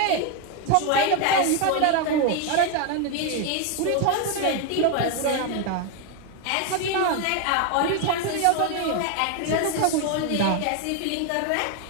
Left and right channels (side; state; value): both; different; correlation 0.01